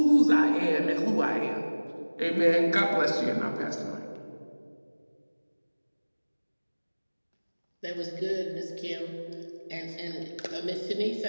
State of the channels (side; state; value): both; inverted; correlation -1.00